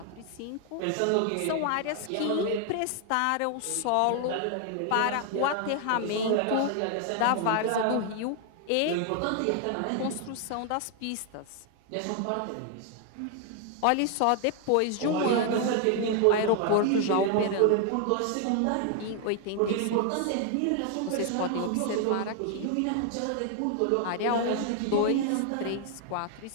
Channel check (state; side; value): different; both; correlation 0.00